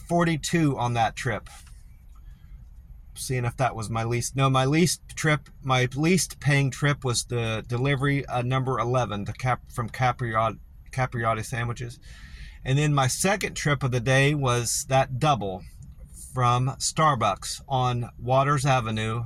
on that trip. Seeing if that was my least. No, my least paying trip was the delivery number 11, from capriotti sandwiches. And then my second trip of the day was that double from Starbucks on Waters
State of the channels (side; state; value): both; identical; correlation 1.00